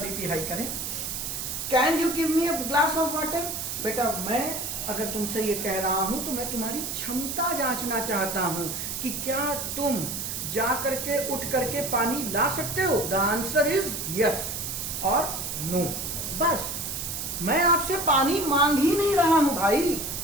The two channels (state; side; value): noise; right; hiss, 4 dB below the sound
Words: बीपी हाई करें। Can you give me a glass of water, बेटा मैं अगर तुमसे ये कह रहा हूं तो मैं तुम्हारी क्षमता जांचना चाहता हूं कि क्या तुम जा करके उठ करके पानी ला सकते हो। द आंसर इज यस और नो, बस। मैं आपसे पानी मांग ही नहीं रहा हूं भाई,